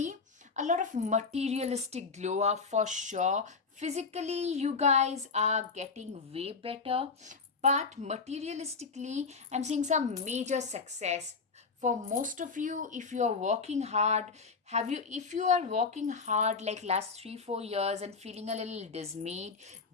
a lot of materialistic glow up for sure. Physically, you guys are getting way better, but materialistically, I'm seeing some major success for most of you. If you are working hard, have you if you are working hard like last 3 4 years and feeling a little dismayed,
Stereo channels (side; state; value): right; quieter; 4.8 dB